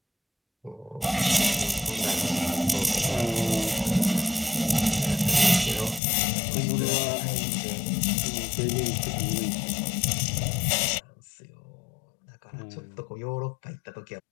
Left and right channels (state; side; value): drops out; right; at 6.0 s